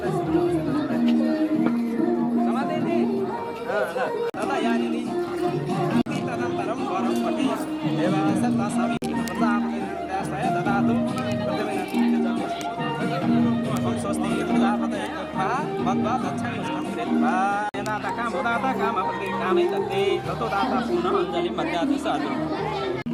समाधेति तदा यानिनि तदनन्तरं वरं पठि देवास तस्मै प्रदापय ददातु स्वस्ति प्रजापतये मद्वा दक्षिणं कृत्वा कामपत्रिकामे दत्ते ततो दाता पुनः अञ्जलिं मध्याति साधु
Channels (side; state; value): both; identical; correlation 1.00